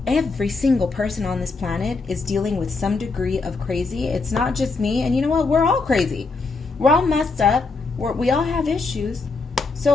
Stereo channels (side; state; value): right; quieter; 4.0 dB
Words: every single person on this planet is dealing with some degree of crazy. It's not just me. And you know what? We're all crazy. We're all messed up. We all have issues.